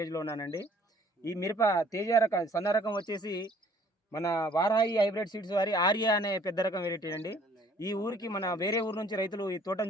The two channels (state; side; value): normal; both; correlation 0.58